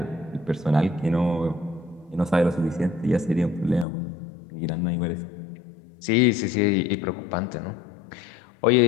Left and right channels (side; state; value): right; drops out; at 3.9 s